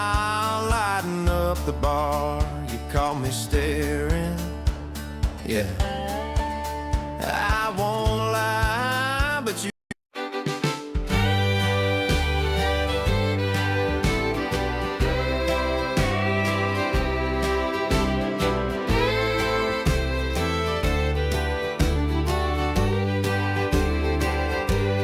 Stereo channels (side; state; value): both; identical; correlation 1.00